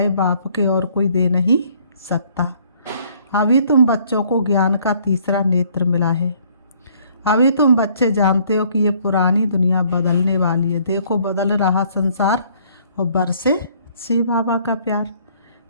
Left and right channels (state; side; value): inverted; both; correlation -0.62